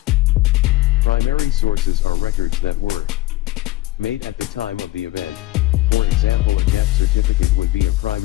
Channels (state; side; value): quieter; right; 17.5 dB